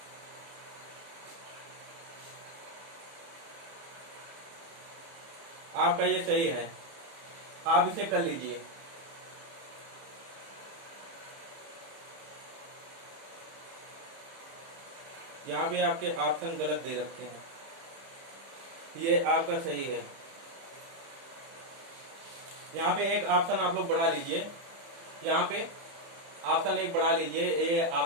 आपका ये सही है, आप इसे कर लीजिए। यहाँ भी आपके ऑप्शन गलत दे रखे हैं, ये आपका सही है। यहाँ पे एक ऑप्शन आप लोग बढ़ा लीजिए, यहाँ पे ऑप्शन एक बढ़ा लीजिए, ये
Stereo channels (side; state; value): left; late; 30 ms